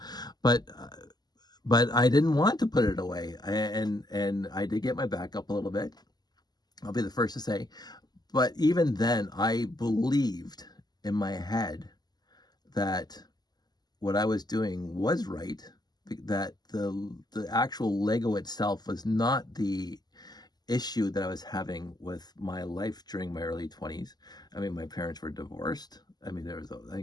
but I didn't want to put it away. And I did get my back up a little bit. I'll be the first to say, but even then I believed in my head that what I was doing was right, that the actual Lego itself was not the issue that I was having with my life during my early 20s. I mean, my parents were divorced. I mean,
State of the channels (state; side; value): late; right; 0.20 ms